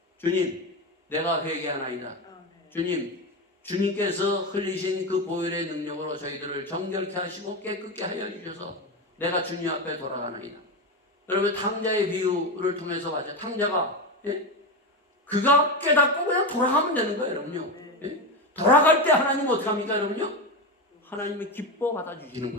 주님, 내가 회개하나이다. 주님, 주님께서 흘리신 그 보혈의 능력으로 저희들을 정결케 하시고 깨끗게 하여 주셔서 내가 주님 앞에 돌아가나이다. 여러분, 탕자의 비유를 통해서 봤죠. 탕자가 그가 깨닫고 그냥 돌아가면 되는 거예요, 여러분요. 돌아갈 때 하나님 어떻게 합니까, 여러분요? 하나님이 기뻐 받아주시는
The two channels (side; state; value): both; normal; correlation 0.17